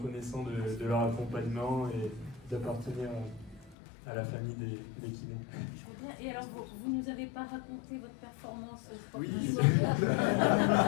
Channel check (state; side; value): drops out; right; at 3.8 s